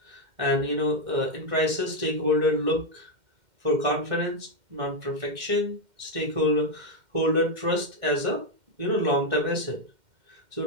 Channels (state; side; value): late; left; 2.1 ms